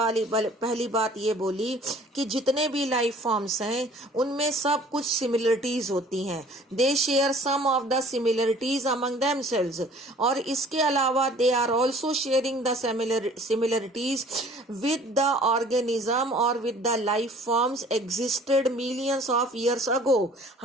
बात ये बोली कि जितने भी लाइफ फॉर्म्स हैं उनमें सब कुछ सिमिलरिटीज होती हैं. They share some of the similarities among themselves. और इसके अलावा they are also sharing the similarities with the organism or with the life forms existed millions of years ago.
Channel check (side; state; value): both; normal; correlation 0.51